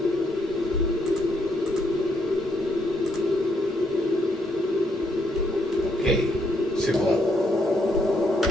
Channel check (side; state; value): both; normal; correlation 0.74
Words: Ok, c'est bon.